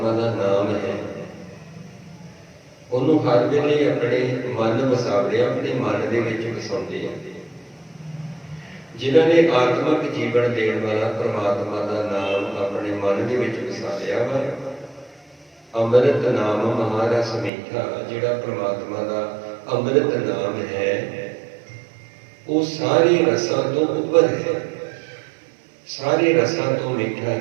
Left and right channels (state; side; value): drops out; left; at 17.5 s